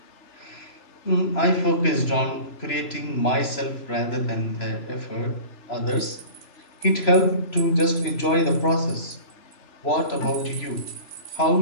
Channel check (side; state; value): right; late; 3.0 ms